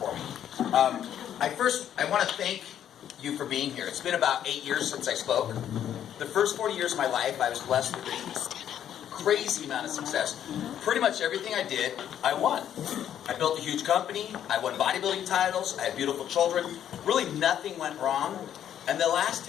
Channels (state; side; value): quieter; right; 10.1 dB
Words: me. I want to thank you for being here. It's been about 8 years since I spoke. The first 40 years of my life, I was blessed with a crazy amount of success. Pretty much everything I did, I won. I built a huge company. I won bodybuilding titles. I had beautiful children. Really nothing went wrong. And the last